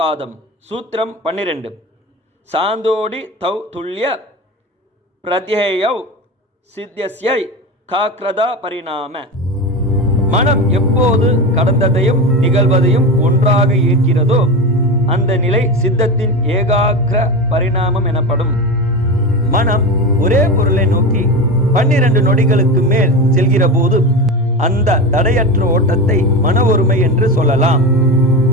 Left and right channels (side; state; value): both; normal; correlation 0.23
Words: சூத்திரம் 12 சாந்தோடி தௌ துல்லிய பிரத்யேயௌ சித்தியஸ்யை காக்ரதா பரிணாம. மனம் எப்போது கடந்ததையும் நிகழ்வதையும் ஒன்றாக இருக்கிறதோ அந்த நிலை சித்தத்தின் ஏகாக்கிர பரிணாமம் எனப்படும். மனம் ஒரே பொருளை நோக்கி 12 நொடிகளுக்கு மேல் செல்கிற போது அந்த தடையற்ற ஓட்டத்தை மன ஒருமை என்று சொல்லலாம்.